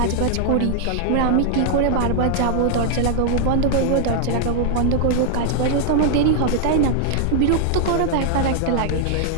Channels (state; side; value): different; both; correlation -0.01